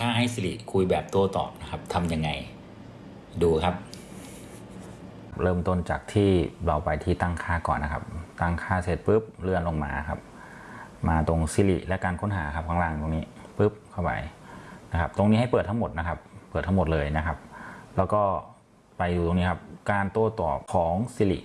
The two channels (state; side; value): identical; both; correlation 1.00